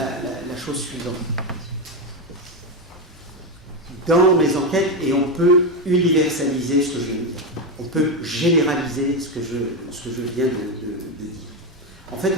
chose suivante. Dans mes enquêtes, et on peut universaliser ce que je viens de dire, on peut généraliser ce que je viens de dire. En fait,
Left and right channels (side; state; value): both; normal; correlation 0.10